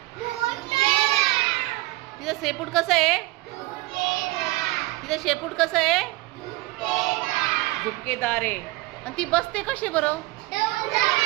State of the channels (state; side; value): quieter; left; 20.7 dB